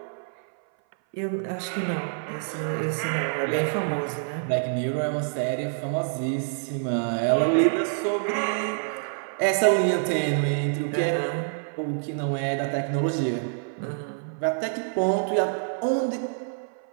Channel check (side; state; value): left; silent; 57 dB below the other